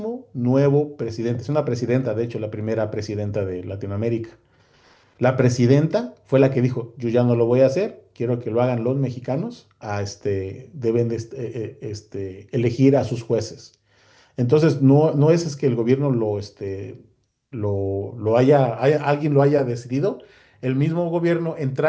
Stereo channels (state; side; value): identical; both; correlation 1.00